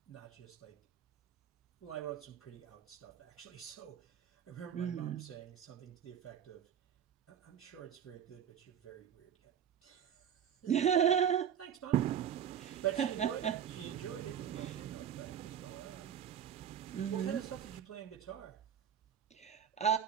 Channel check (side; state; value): left; quieter; 9.0 dB